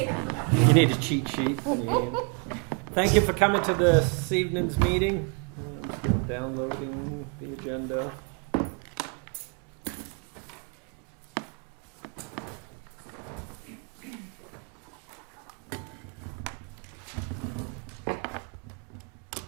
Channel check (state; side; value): quieter; left; 36.4 dB